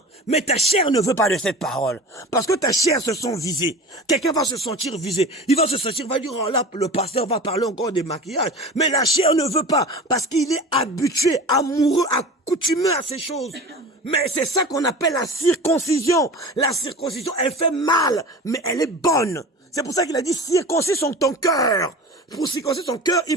Mais ta chair ne veut pas de cette parole. Parce que ta chair se sent visée. Quelqu'un va se sentir visé. Il va se sentir, va dire, oh là, le pasteur va parler encore des maquillages. Mais la chair ne veut pas. Parce qu'il est habitué, amoureux, accoutumé à ces choses. Mais c'est ça qu'on appelle la circoncision. La circoncision, elle fait mal, mais elle est bonne. C'est pour ça qu'il a dit, circoncis ton cœur. Pour circoncire ton cœur,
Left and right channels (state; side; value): normal; both; correlation 0.34